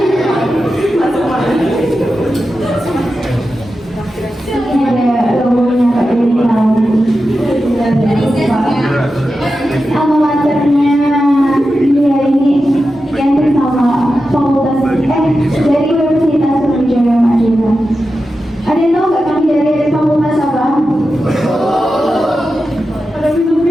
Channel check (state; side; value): normal; both; correlation 0.91